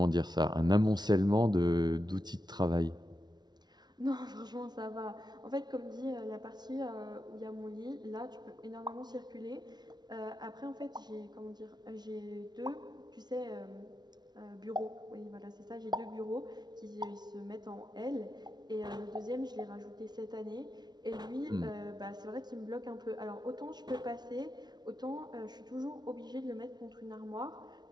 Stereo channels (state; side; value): late; left; 0.20 ms